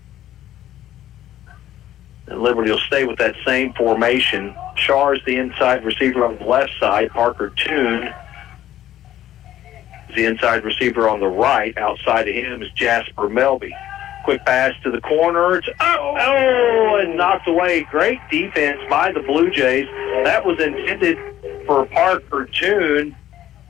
And Liberty will stay with that same formation. Shaw is the inside receiver on the left side. Parker Toon is the inside receiver on the right. Outside of him is Jasper Melby. Quick pass to the corner. It's and knocked away. Great defense by the Blue Jays. That was intended for Parker Toon.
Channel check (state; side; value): quieter; right; 12.5 dB